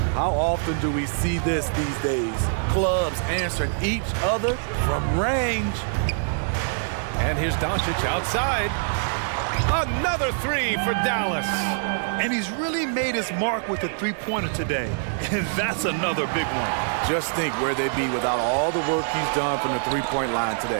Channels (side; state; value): left; silent; 62 dB below the other